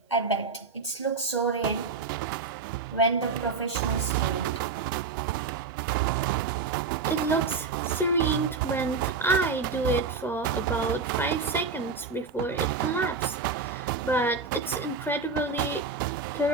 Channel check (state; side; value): quieter; left; 4.6 dB